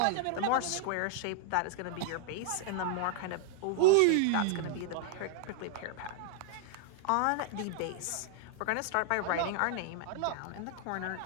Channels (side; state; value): both; different; correlation -0.01